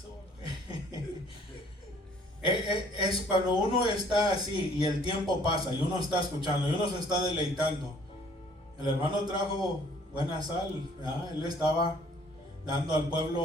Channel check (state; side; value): normal; both; correlation 0.58